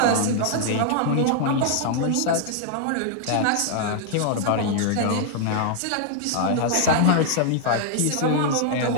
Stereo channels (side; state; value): both; different; correlation 0.00